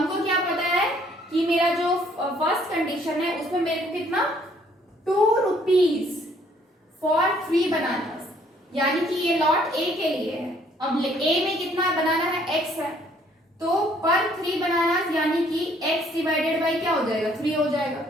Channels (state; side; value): normal; both; correlation 0.63